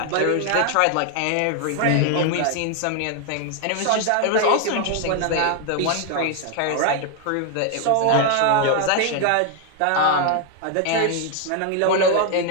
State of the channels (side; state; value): both; different; correlation 0.01